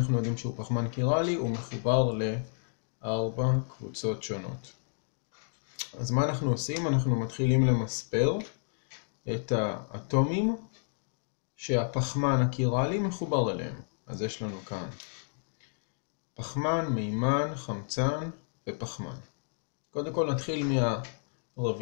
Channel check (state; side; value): silent; right; digital silence